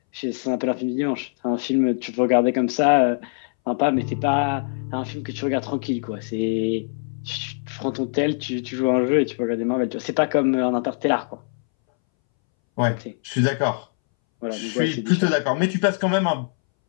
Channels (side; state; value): right; silent; 62 dB below the other